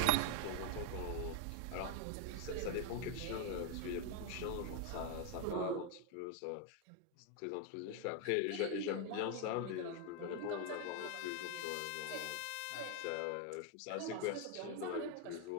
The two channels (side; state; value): both; different; correlation 0.01